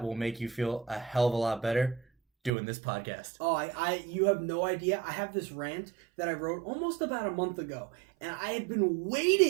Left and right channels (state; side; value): drops out; left; at 2.5 s